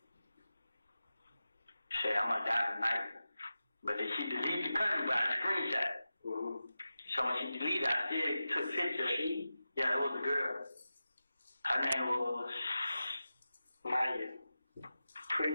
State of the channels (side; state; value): both; inverted; correlation -0.93